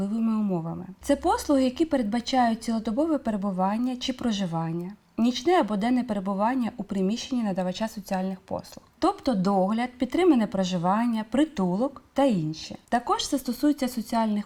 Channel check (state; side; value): identical; both; correlation 1.00